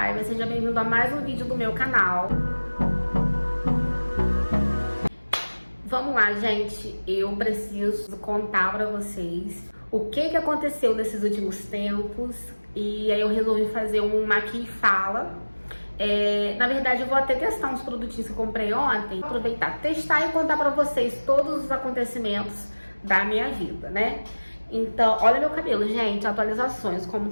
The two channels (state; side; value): inverted; both; correlation -1.00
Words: seja bem-vindo a mais um vídeo do meu canal. Vamos lá, gente, eu preciso contar pra vocês o que aconteceu nesses últimos tempos. E aí eu resolvi fazer um Aqui e Fala. Na verdade, eu vou até testar uns produtinhos que eu comprei ontem. Aproveitar, testar e contar pra vocês todos os acontecimentos da minha vida, né? Então, olha meu cabelo, gente, atualizações, como